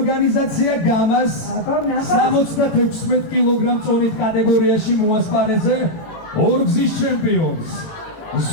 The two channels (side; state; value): right; late; 18 ms